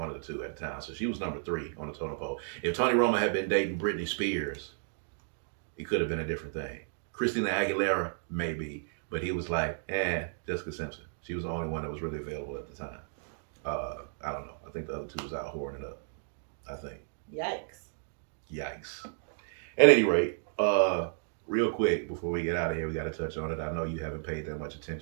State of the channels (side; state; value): left; silent; digital silence